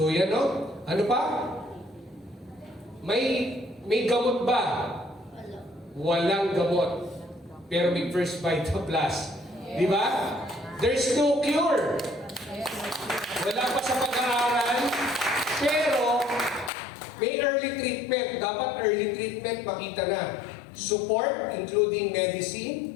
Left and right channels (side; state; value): right; drops out; at 16.7 s